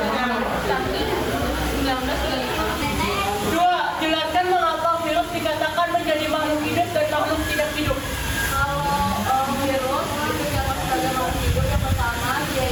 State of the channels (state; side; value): identical; both; correlation 1.00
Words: Saki 1935. Dua, jelaskan mengapa virus dikatakan menjadi makhluk hidup dan makhluk tidak hidup. Kalau virus itu yang sebagai makhluk hidup yang pertama